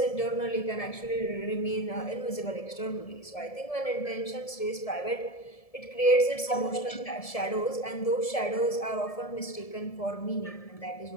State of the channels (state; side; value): late; right; 1.7 ms